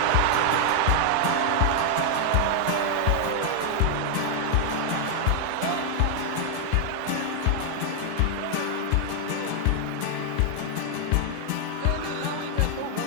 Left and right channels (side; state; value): both; different; correlation 0.00